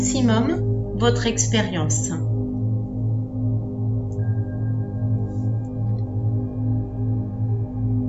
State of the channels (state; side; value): identical; both; correlation 1.00